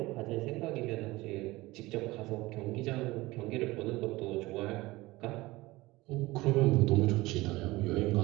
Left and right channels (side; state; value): left; quieter; 20.0 dB